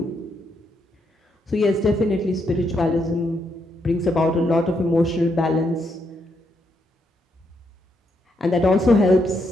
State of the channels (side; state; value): both; normal; correlation 0.78